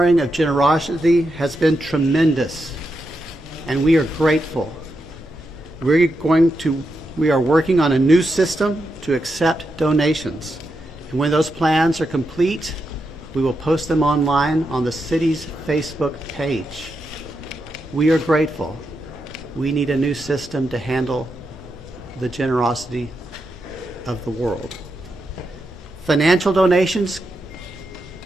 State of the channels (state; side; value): normal; both; correlation 0.85